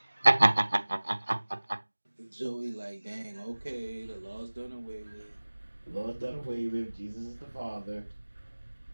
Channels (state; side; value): inverted; both; correlation -1.00